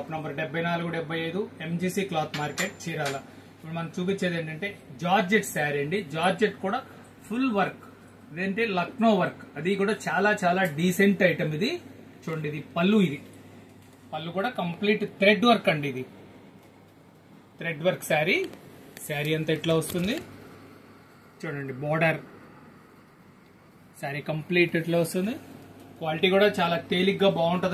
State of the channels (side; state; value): both; identical; correlation 1.00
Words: number 7475 MGC cloth market, Chirala. ఇప్పుడు మనం చూపించేది ఏంటంటే జార్జెట్ శారీ అండి. జార్జెట్ కూడా ఫుల్ వర్క్, ఇదేంటే లక్నో వర్క్, అది కూడా చాలా చాలా డీసెంట్ ఐటమ్. ఇది చూడండి, ఇది పళ్ళు. ఇది పళ్ళు కూడా కంప్లీట్ థ్రెడ్ వర్క్ అండి. ఇది థ్రెడ్ వర్క్ శారీ. శారీ అంతా ఇట్లా వస్తుంది చూడండి. బోర్డర్ శారీ కంప్లీట్ ఇట్లా వస్తుంది. క్వాలిటీ కూడా చాలా తేలిగ్గా